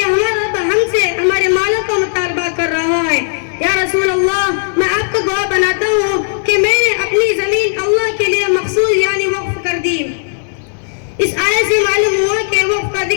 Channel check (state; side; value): silent; right; digital silence